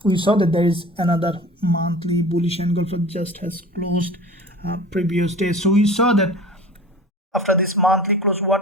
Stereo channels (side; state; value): both; normal; correlation 0.39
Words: We saw that there is another monthly bullish engulfer just has closed previous day. So we saw that after this monthly close, what